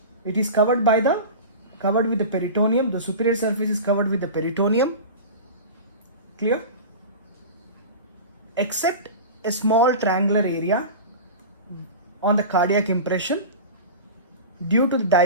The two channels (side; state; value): both; inverted; correlation -0.31